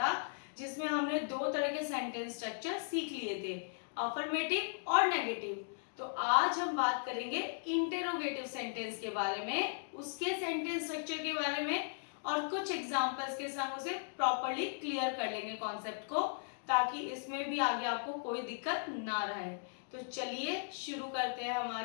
जिसमें हमने दो तरह के सेंटेंस स्ट्रक्चर सीख लिए थे, अफर्मेटिव और नेगेटिव। तो आज हम बात करेंगे इंटेरोगेटिव सेंटेंस के बारे में, उसके सेंटेंस स्ट्रक्चर के बारे में और कुछ एग्जांपल्स के संग उसे प्रॉपर्ली क्लियर कर लेंगे कॉन्सेप्ट को, ताकि इसमें भी आगे आपको कोई दिक्कत ना रहे। तो चलिए शुरू करते हैं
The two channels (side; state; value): right; silent; digital silence